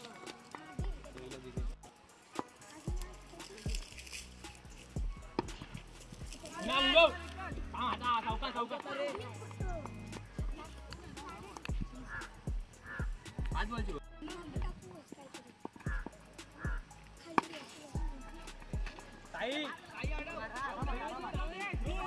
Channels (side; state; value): both; identical; correlation 1.00